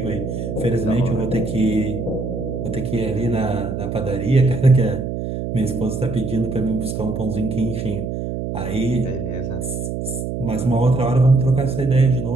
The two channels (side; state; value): right; noise; hum, 4 dB below the sound